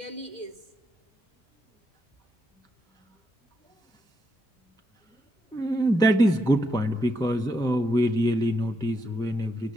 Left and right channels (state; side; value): normal; both; correlation 0.82